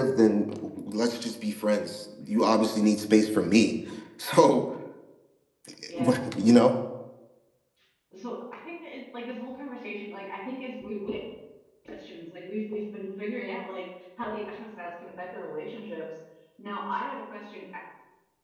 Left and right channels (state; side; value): identical; both; correlation 1.00